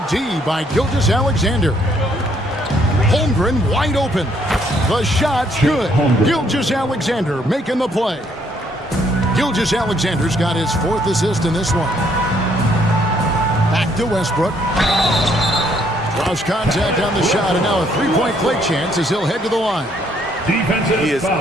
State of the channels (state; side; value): normal; both; correlation 0.68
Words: D by Gilgeous-Alexander. Holmgren wide open. The shot's good. Gilgeous-Alexander making the play. Gilgeous-Alexander's got his 4th assist in this one. Back to Westbrook. Draws contact on the shot, and now a 3-point play chance as he'll head to the line. He is